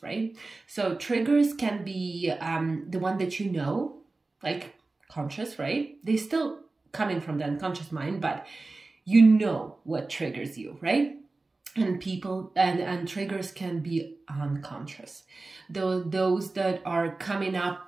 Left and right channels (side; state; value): left; quieter; 3.4 dB